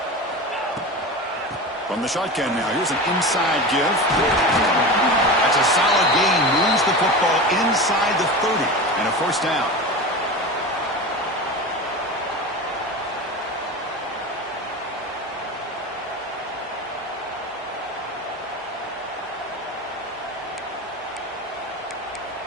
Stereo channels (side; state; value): both; normal; correlation 0.28